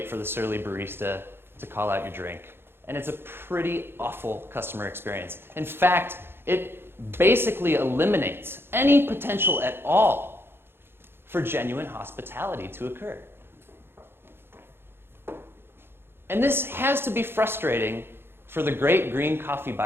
for the surly barista to call out your drink. And it's a pretty awful customer experience. In fact, it basically eliminates any potential at all for genuine hospitality to occur. And this has to be frustrating for the great green coffee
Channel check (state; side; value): late; left; 0.11 ms